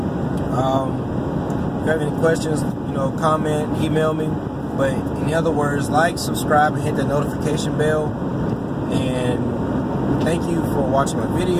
you have any questions, you know, comment, email me. But in other words, like, subscribe, and hit the notification bell. And thank you for watching my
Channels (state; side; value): identical; both; correlation 1.00